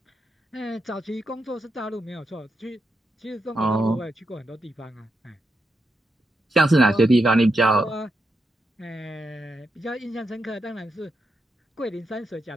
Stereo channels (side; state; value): both; normal; correlation 0.84